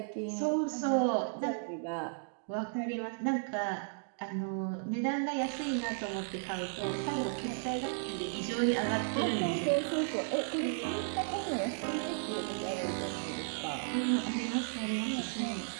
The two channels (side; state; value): left; silent; digital silence